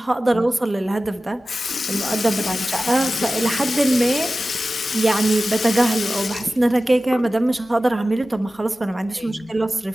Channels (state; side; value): normal; both; correlation 0.95